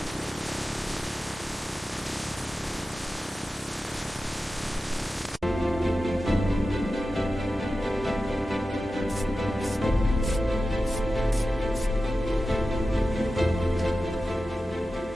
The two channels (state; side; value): normal; both; correlation 0.93